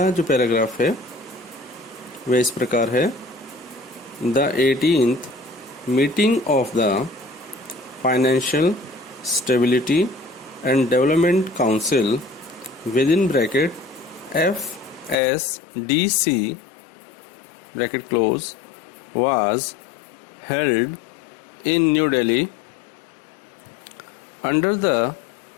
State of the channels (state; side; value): drops out; right; at 15.2 s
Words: जो पैराग्राफ है वह इस प्रकार है। The 18th meeting of the financial stability and development council with in bracket FSDC bracket close was held in New Delhi under the